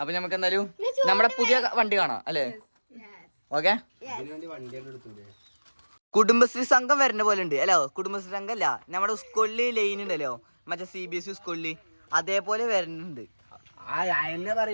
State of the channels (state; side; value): inverted; both; correlation -1.00